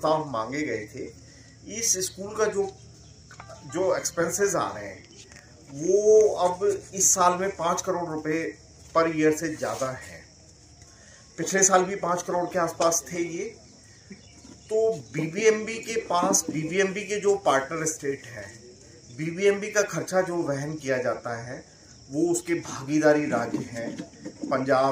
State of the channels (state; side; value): identical; both; correlation 1.00